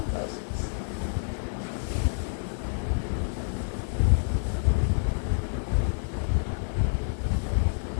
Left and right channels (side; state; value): right; silent; digital silence